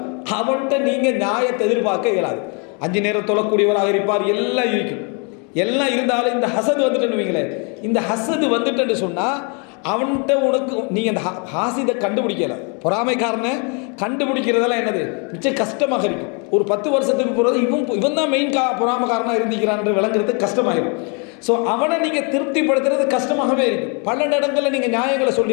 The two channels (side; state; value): right; quieter; 35.5 dB